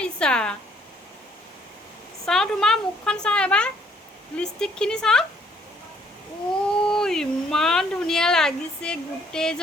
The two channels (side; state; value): both; normal; correlation 0.65